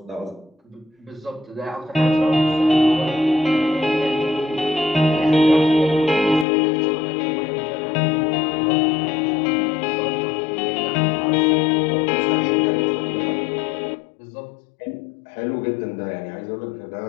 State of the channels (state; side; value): drops out; right; at 6.5 s